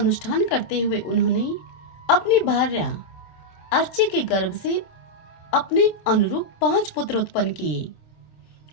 करते हुए उन्होंने अपनी भार्या अर्ची के गर्भ से अपने अनुरूप 5 पुत्र उत्पन्न किए।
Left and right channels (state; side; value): late; right; 26 ms